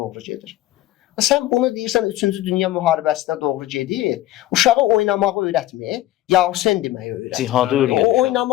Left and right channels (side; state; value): right; quieter; 14.8 dB